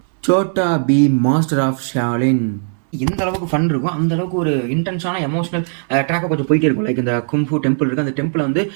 Chhota Bheem master of Shaolin. எந்த அளவுக்கு ஃபன் இருக்கும் அந்த அளவுக்கு ஒரு இன்டென்ஸான எமோஷனல் ட்ராக்காக கொஞ்சம் போயிட்டே இருக்கும். லைக் இந்த கும்ஃபு டெம்பிள் இருக்குது, அந்த டெம்பிளை வந்து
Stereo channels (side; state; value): left; silent; 63 dB below the other